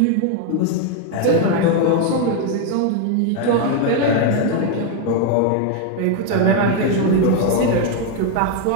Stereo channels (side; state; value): both; different; correlation 0.01